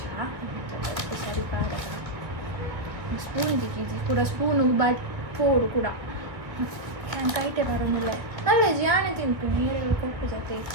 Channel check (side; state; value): left; late; 1.8 ms